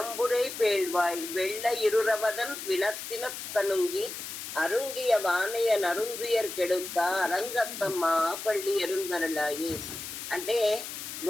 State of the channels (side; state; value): left; noise; hiss, 8 dB below the sound